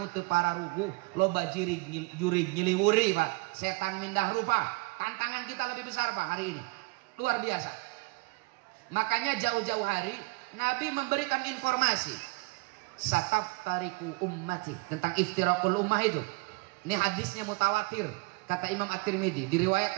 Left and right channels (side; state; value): left; quieter; 27.6 dB